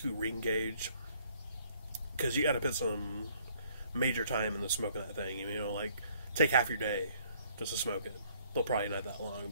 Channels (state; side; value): inverted; both; correlation -0.62